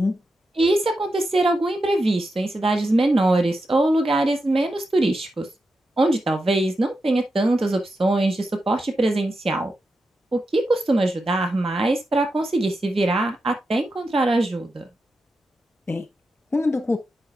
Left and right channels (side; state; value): both; normal; correlation 0.88